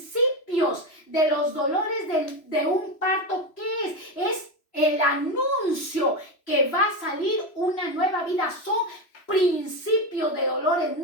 de los dolores de un parto, ¿qué es? Es el anuncio que va a salir una nueva vida. Son principios de dolores.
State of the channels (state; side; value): late; right; 3.0 ms